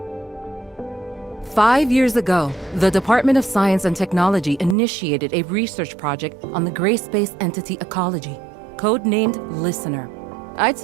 5 years ago, the Department of Science and Technology initiated a research project on the gray space entity ecology, codenamed Listener. I'd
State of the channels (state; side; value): drops out; left; at 4.8 s